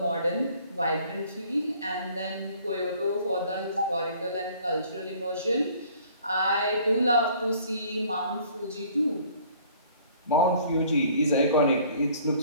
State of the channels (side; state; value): both; inverted; correlation -0.55